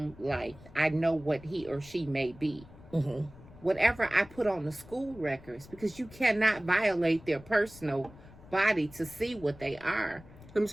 life, I know what he or she may be. Mm-hmm. Whatever I put on the school records, because you cannot violate their personal body to see what they are. Let me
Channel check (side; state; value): left; noise; rumble, 20 dB below the sound